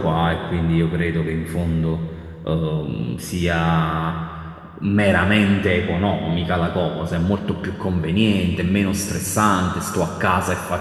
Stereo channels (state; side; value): identical; both; correlation 1.00